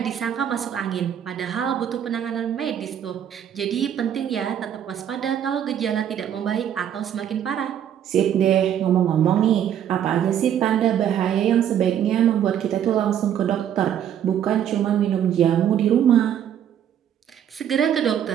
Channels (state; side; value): quieter; left; 9.7 dB